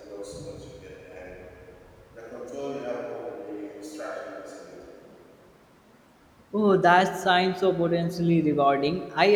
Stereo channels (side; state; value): both; identical; correlation 1.00